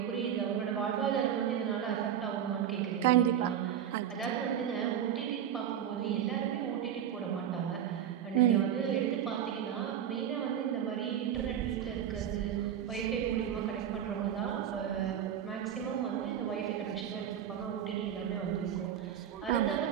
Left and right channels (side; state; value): left; quieter; 9.6 dB